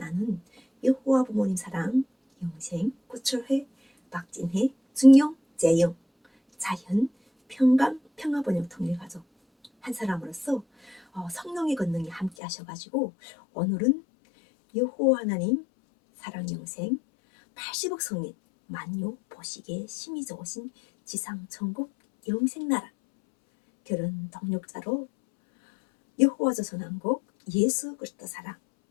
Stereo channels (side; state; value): right; drops out; at 12.3 s